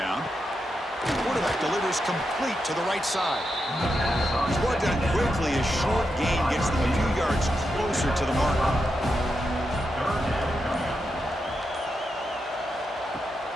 The quarterback delivers complete to the right side. He's brought down quickly. A short gain gets them a few yards closer to the marker.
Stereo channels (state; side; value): normal; both; correlation 0.86